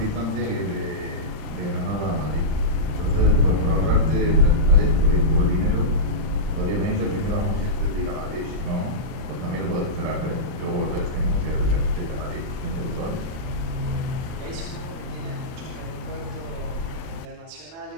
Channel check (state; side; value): late; left; 38 ms